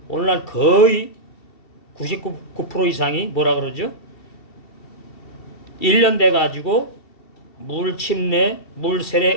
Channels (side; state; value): right; late; 2.7 ms